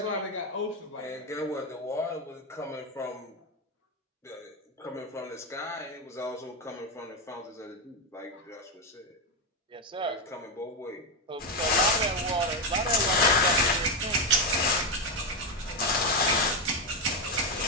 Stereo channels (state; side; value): normal; both; correlation 0.09